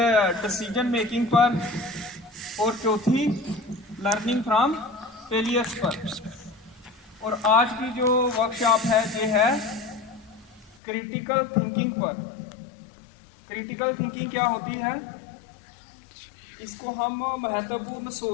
डिसीजन मेकिंग पर, और चौथी लर्निंग फ्रॉम फेलियर्स पर। और आज की जो वर्कशॉप है ये है क्रिटिकल थिंकिंग पर। क्रिटिकल थिंकिंग क्या होती है? इसको हम महत्वपूर्ण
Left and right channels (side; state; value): right; drops out; at 10.8 s